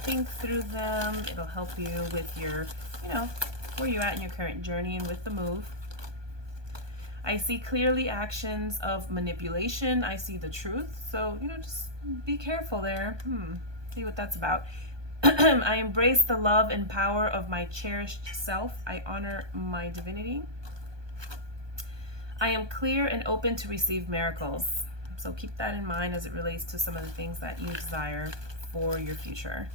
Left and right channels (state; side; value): late; left; 1.2 ms